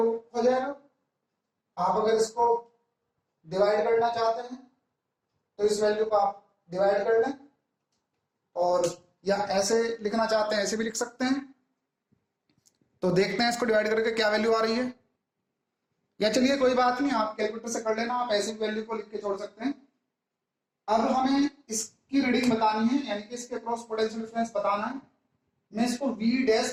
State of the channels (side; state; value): both; identical; correlation 1.00